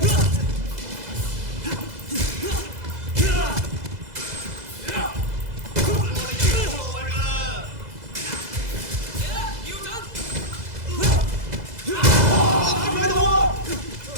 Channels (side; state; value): left; late; 2.0 ms